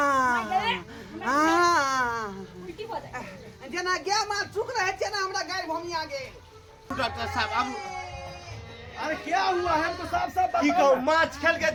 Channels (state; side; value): identical; both; correlation 1.00